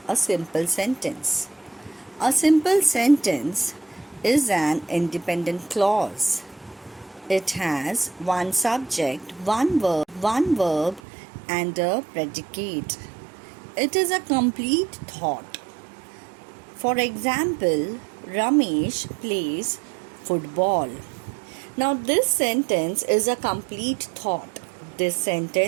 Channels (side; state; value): left; drops out; at 11.0 s